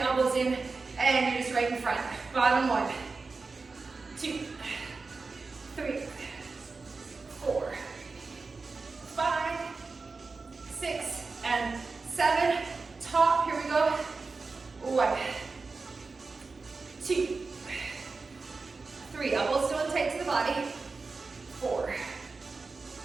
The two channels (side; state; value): left; quieter; 4.1 dB